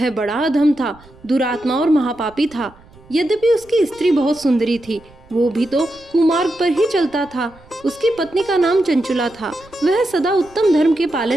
बड़ा अधम था, दुरात्मा और महापापी था। यद्यपि उसकी स्त्री बहुत सुंदरी थी, वो भी तो कुमार्ग पर ही चलता था। उसकी पत्नी का नाम चंचुला था। वह सदा उत्तम धर्म के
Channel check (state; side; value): noise; right; rumble, 25 dB below the sound